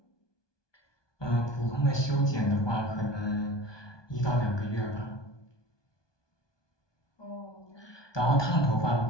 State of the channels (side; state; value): right; late; 1.2 ms